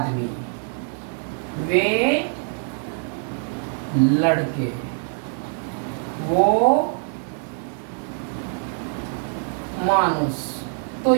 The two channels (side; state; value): left; silent; 57 dB below the other